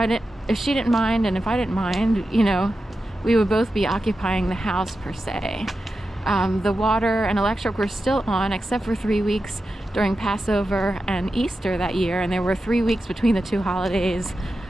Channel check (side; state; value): both; normal; correlation 0.91